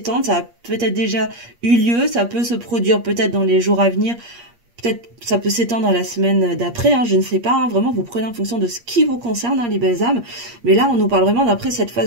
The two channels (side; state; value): left; late; 8.5 ms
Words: ça a peut-être déjà eu lieu, ça peut se produire peut-être dans les jours à venir, peut-être ça peut s'étendre à la semaine d'après, hein, je ne sais pas, hein, vraiment vous prenez en fonction de ce qui vous concerne, hein, les belles âmes. Mais là on nous parle vraiment d'après cette